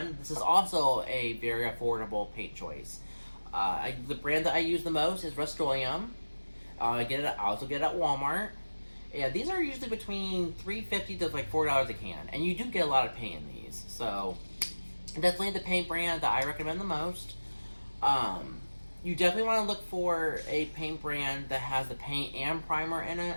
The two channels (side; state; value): both; inverted; correlation -1.00